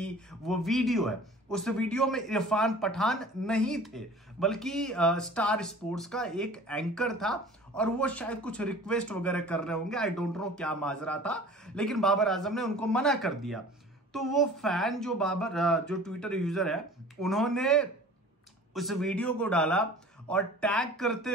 वो वीडियो है। उस वीडियो में इरफान पठान नहीं थे, बल्कि स्टार स्पोर्ट्स का एक एंकर था, और वो शायद कुछ रिक्वेस्ट वगैरह कर रहे होंगे। आई डोंट नो क्या माजरा था, लेकिन बाबर आजम ने उनको मना कर दिया। तो वो फैन जो ट्विटर यूजर है, उन्होंने उस वीडियो को डाला और टैग करते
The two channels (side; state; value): both; normal; correlation 0.44